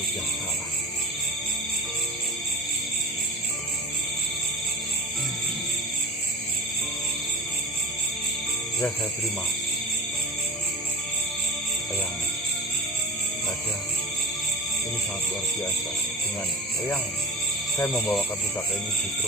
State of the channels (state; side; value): normal; both; correlation 0.31